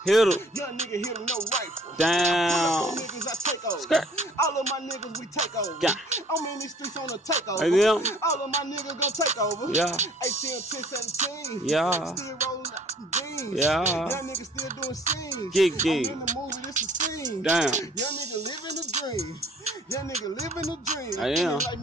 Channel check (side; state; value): both; normal; correlation 0.56